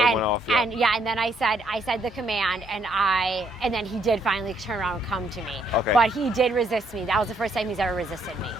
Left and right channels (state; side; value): normal; both; correlation 0.71